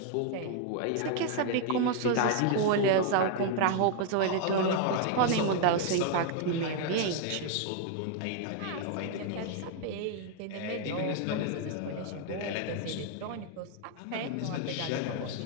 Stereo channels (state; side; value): different; both; correlation 0.00